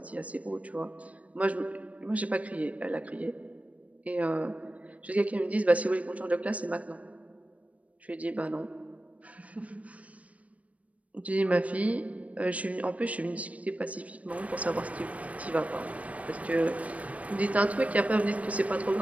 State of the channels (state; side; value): late; left; 0.067 ms